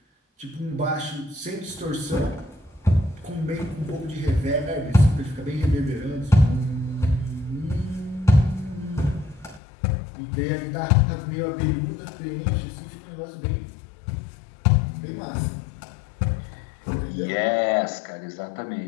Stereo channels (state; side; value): drops out; right; at 9.6 s